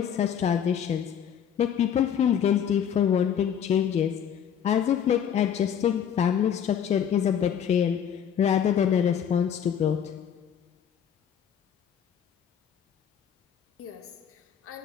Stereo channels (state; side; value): quieter; right; 8.6 dB